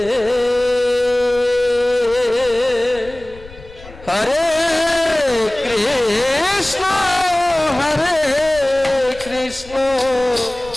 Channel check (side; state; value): left; noise; rumble, 19 dB below the sound